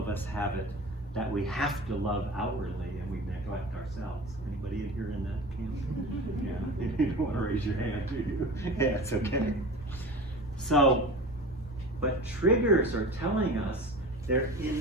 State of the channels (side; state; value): both; normal; correlation 0.35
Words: us have it that we have to love outwardly and we neglect neglect ourselves. Anybody in here in that camp? Yeah, you don't want to raise your hand, do you? Yeah, it's okay. So, but triggers are telling us they're